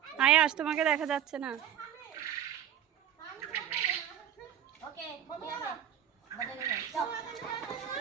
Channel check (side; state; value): left; quieter; 10.1 dB